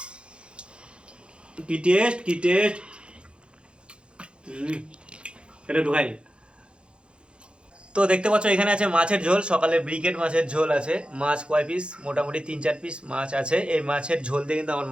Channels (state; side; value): late; left; 0.056 ms